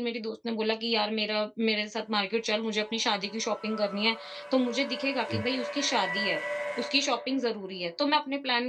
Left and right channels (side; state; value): both; identical; correlation 1.00